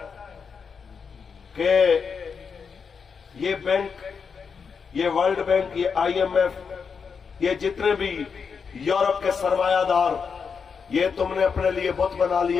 کہ یہ بینک، یہ ورلڈ بینک، یہ آئی ایم ایف، یہ جتنے بھی یورپ کے سرمایہ دار، یہ تم نے اپنے لیے بت بنا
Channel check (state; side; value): quieter; right; 5.9 dB